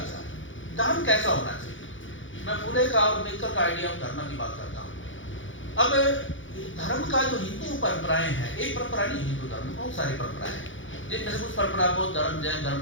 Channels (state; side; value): late; right; 0.56 ms